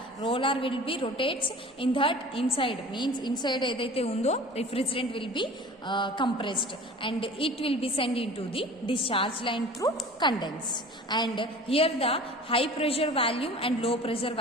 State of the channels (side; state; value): both; normal; correlation 0.42